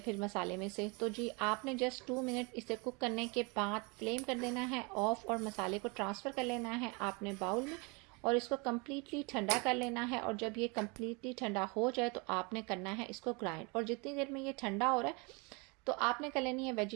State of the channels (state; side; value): quieter; left; 30.0 dB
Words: फिर मसाले में से। तो जी, आपने जस्ट 2 मिनट इसे कुक करने के बाद फ्लेम कर देना है ऑफ और मसाले को ट्रांसफ़र कर लेना है आपने बाउल में और इसको कम्प्लीटली ठंडा कर लेना है। और जब ये कम्प्लीटली ठंडा हो जाए तो आपने करना है इसको ग्राइंड। और जितनी देर में ये ठंडा हो रहा है तो आपने कर लेनी है